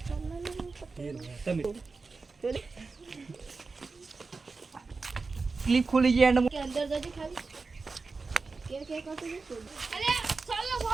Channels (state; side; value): quieter; left; 4.2 dB